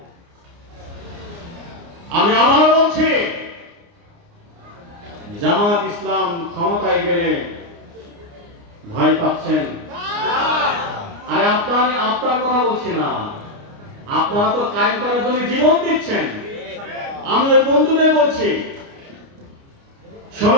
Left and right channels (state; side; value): late; left; 29 ms